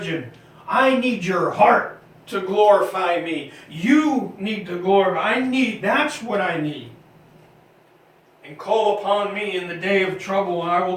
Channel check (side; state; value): both; identical; correlation 1.00